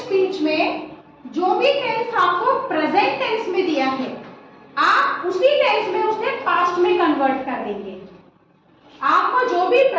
में जो भी टेंस आपको प्रेजेंट टेंस में दिया है, आप उसी टेंस में उसे पास्ट में कन्वर्ट कर देंगे। आपको जो भी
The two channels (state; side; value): identical; both; correlation 1.00